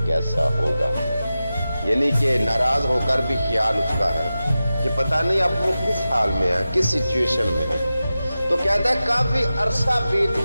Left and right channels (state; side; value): inverted; both; correlation -0.94